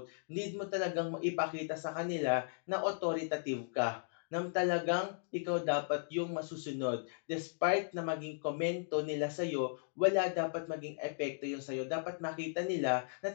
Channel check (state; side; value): silent; right; digital silence